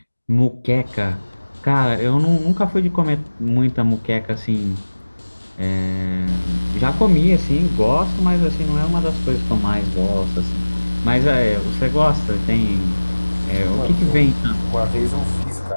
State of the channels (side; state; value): both; inverted; correlation -1.00